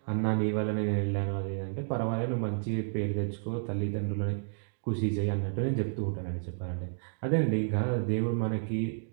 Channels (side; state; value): left; silent; digital silence